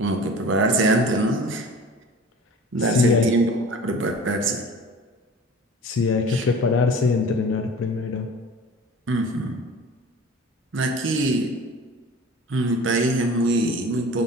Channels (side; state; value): both; normal; correlation 0.41